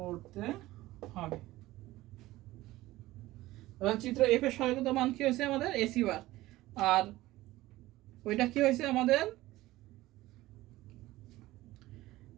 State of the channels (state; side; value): quieter; left; 17.4 dB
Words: হবে। চিত্র এফ এর সরলকৃত মান কি হয়েছে আমাদের এসি বার, আর ওইটা কি হয়েছে আমাদের